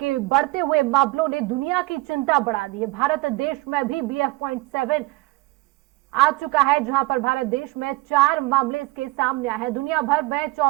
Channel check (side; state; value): left; quieter; 21.2 dB